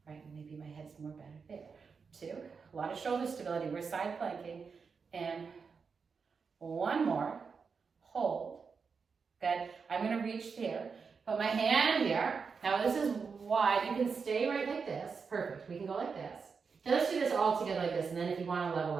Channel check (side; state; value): left; quieter; 5.5 dB